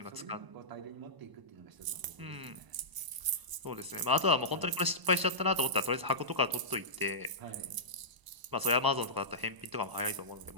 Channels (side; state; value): left; late; 1.0 ms